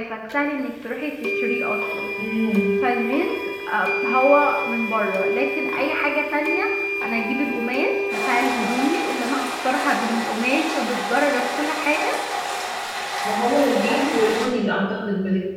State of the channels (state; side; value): identical; both; correlation 1.00